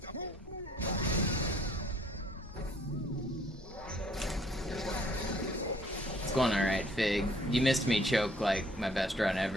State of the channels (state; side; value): normal; both; correlation 0.60